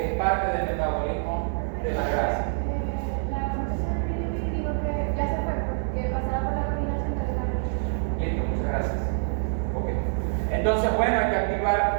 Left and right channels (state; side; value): silent; left; digital silence